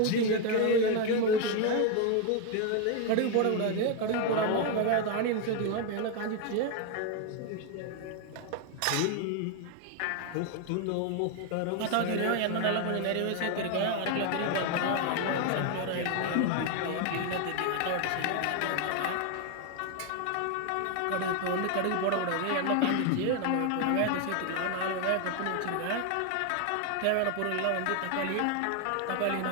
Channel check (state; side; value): different; both; correlation 0.01